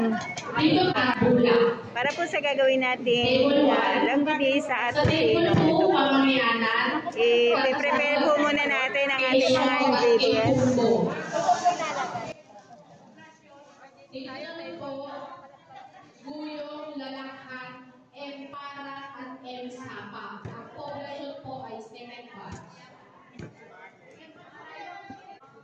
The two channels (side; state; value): both; identical; correlation 1.00